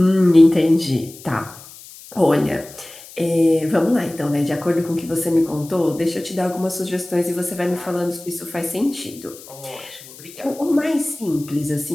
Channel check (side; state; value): left; noise; hiss, 18 dB below the sound